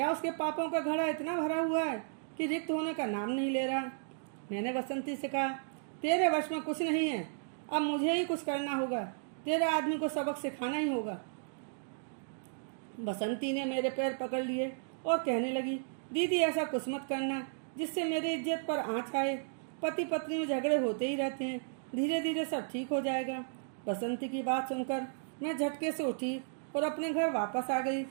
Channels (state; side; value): silent; left; digital silence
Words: उसके पापों का घड़ा इतना भरा हुआ है कि रिक्त होने का नाम नहीं ले रहा? मैंने बसंती से कहा, तेरे वश में कुछ नहीं है। अब मुझे ही कुछ करना होगा। तेरे आदमी को सबक सिखाना ही होगा। बसंती ने मेरे पैर पकड़ लिए और कहने लगी, दीदी ऐसा कुछ मत करना जिससे मेरी इज्जत पर आँच आए। पति पत्नी में झगड़े होते ही रहते हैं, धीरे धीरे सब ठीक हो जाएगा। बसंती की बात सुनकर मैं झटके से उठी और अपने घर वापस आ गई।